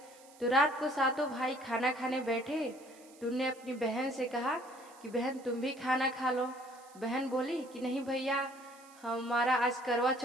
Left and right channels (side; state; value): right; noise; hiss, 24 dB below the sound